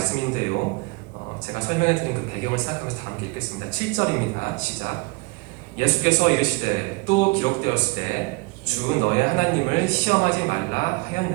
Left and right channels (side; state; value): left; quieter; 27.8 dB